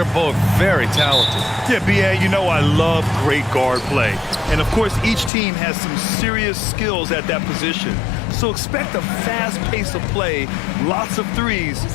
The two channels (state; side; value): drops out; right; at 5.3 s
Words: both very talented. Yeah, B.A., you know I love great guard play. And, of course, each team has some serious skills at that position. So expect a fast pace of play, lots of threes.